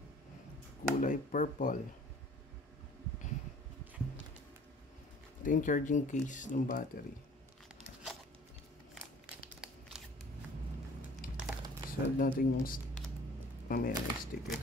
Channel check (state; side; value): normal; both; correlation 0.51